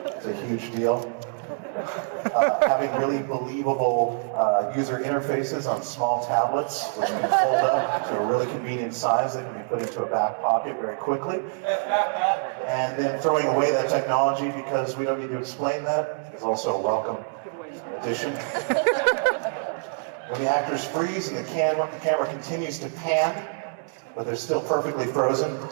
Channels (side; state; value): left; silent; digital silence